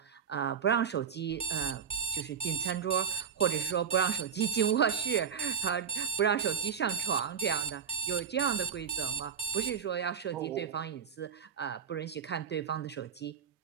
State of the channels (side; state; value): left; quieter; 7.3 dB